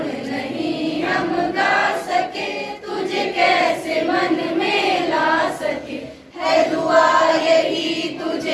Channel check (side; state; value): both; identical; correlation 1.00